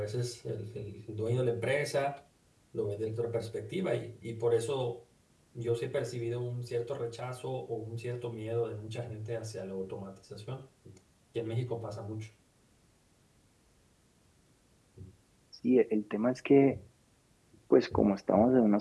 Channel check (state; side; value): identical; both; correlation 1.00